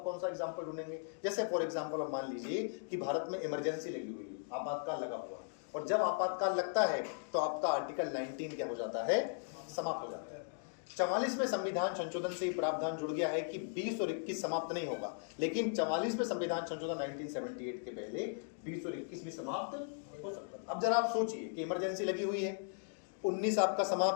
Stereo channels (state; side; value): silent; right; digital silence